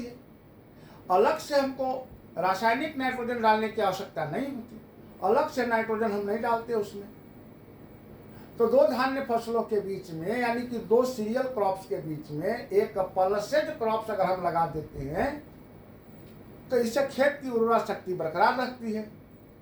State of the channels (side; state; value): both; identical; correlation 1.00